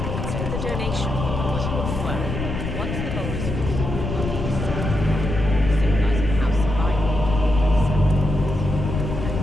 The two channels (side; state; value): left; noise; rumble, 4 dB below the sound